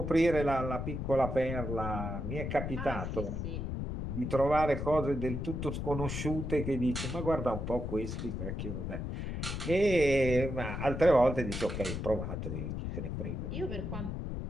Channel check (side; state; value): left; noise; rumble, 4 dB below the sound